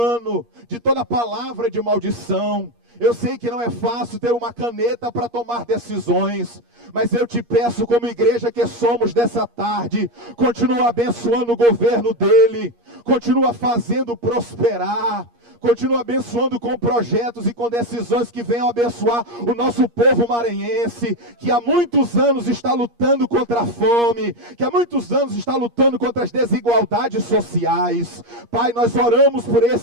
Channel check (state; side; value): late; left; 8.5 ms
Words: de toda palavra de maldição. Eu sei que não é fácil ter uma caneta para tomar decisões, mas eu te peço, como igreja que somos dessa tarde, continua abençoando o governo dele, continua fazendo prosperar, continua abençoando com projetos e com decisões que venham abençoar o nosso povo maranhense, que há muitos anos está lutando contra a fome, que há muitos anos está lutando contra as desigualdades sociais. Pai, nós oramos por